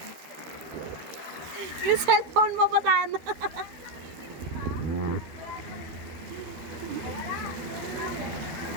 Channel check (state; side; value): late; left; 13 ms